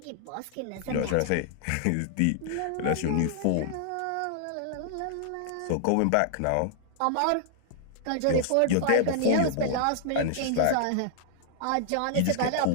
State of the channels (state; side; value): different; both; correlation -0.01